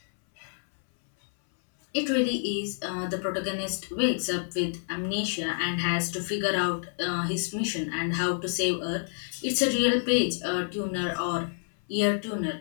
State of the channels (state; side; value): silent; right; 59 dB below the other